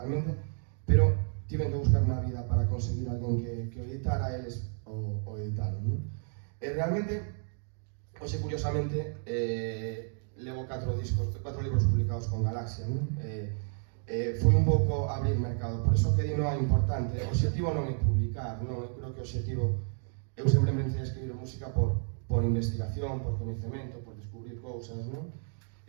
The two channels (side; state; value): left; silent; 57 dB below the other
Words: pero tiven que buscar unha vida para conseguir alguén que o editara, eles o editaron, non? E realmente, hoxe, curiosamente, levo 4 libros publicados con Galaxia, non? Foi un pouco abrir mercado, por iso que di non é importante. O objetivo non é publicar, non? Eu creo que o objetivo, eu sempre me empecé a escribir música por investigación, por coñecemento, por descubrir cousas, non?